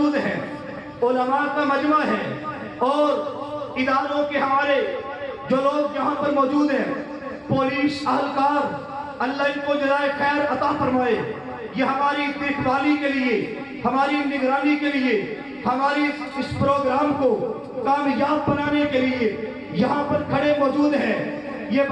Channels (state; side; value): identical; both; correlation 1.00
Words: हैं, उलमा का मजमा है, और इदारों के हमारे जो लोग यहाँ पर मौजूद हैं, पुलिस अहलकार, अल्लाह इनको जज़ाए खैर अता फरमाए। ये हमारी देखभाली के लिए, हमारी निगरानी के लिए, हमारी इस प्रोग्राम को कामयाब बनाने के लिए यहाँ पर खड़े मौजूद हैं। ये